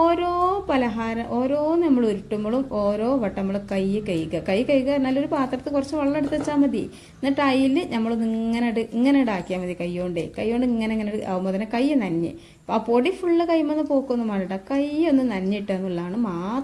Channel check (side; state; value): both; identical; correlation 1.00